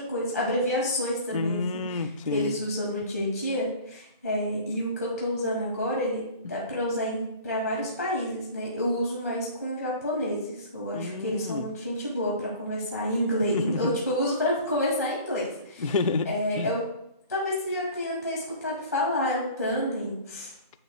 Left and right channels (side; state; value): both; inverted; correlation -0.42